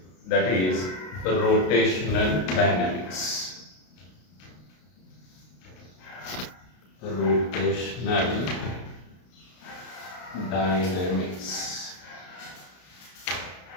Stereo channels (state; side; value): late; right; 33 ms